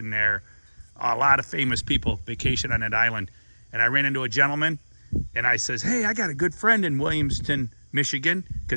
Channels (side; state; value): both; inverted; correlation -1.00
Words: there. A lot of famous people vacation on that island. And I ran into a gentleman, and I says, hey, I got a good friend in Williamston, Michigan,